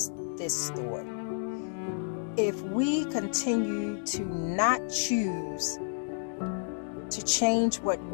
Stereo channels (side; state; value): right; silent; digital silence